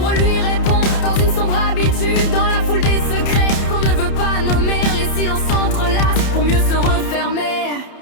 lui répond dans une sombre habitude. Dans la foule des secrets qu'on ne veut pas nommer, les silences s'entrelacent pour mieux se refermer.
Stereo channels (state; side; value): late; right; 31 ms